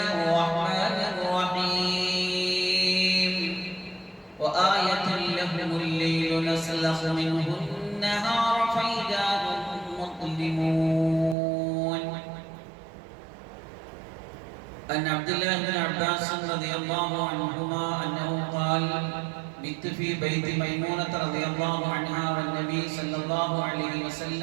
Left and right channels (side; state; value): left; drops out; at 11.4 s